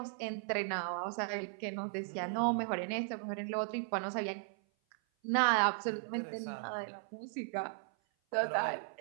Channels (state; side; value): silent; left; 53 dB below the other